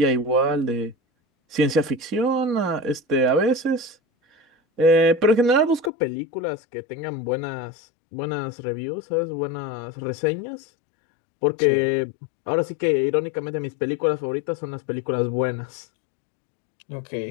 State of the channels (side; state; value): right; drops out; at 5.9 s